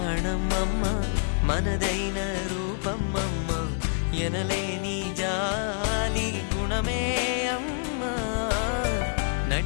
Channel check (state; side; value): silent; right; digital silence